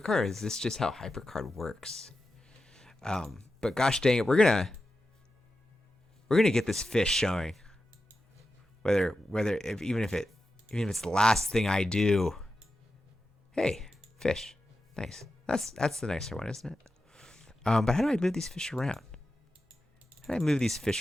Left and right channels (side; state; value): both; normal; correlation 0.91